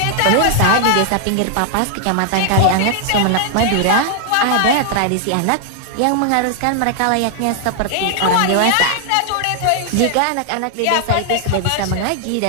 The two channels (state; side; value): different; both; correlation 0.00